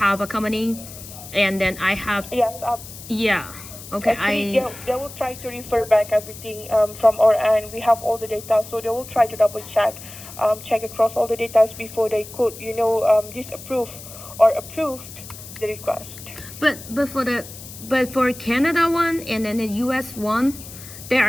a company, and then I have Yes. yeah. Okay, Actually, they will try to refer back everything from our end. We have all the data, so they will try to double check across all the data before they could disapprove or approve the request. But for Canada one and then the US one, there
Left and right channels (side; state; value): left; noise; hiss, 15 dB below the sound